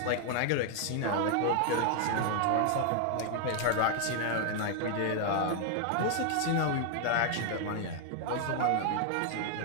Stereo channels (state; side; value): different; both; correlation 0.00